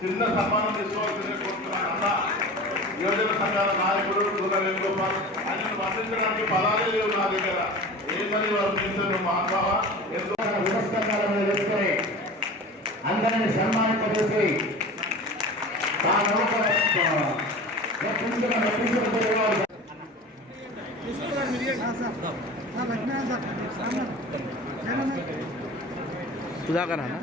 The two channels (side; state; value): both; normal; correlation 0.36